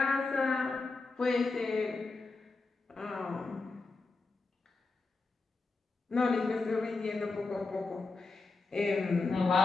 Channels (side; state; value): right; quieter; 3.8 dB